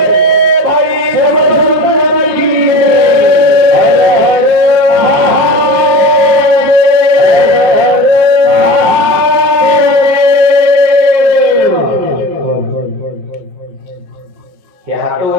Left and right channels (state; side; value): late; left; 5.4 ms